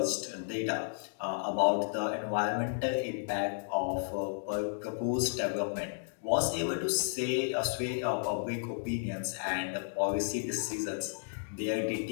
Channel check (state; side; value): silent; right; digital silence